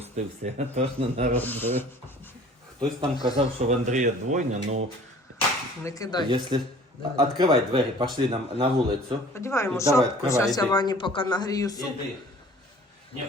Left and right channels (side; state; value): both; normal; correlation 0.49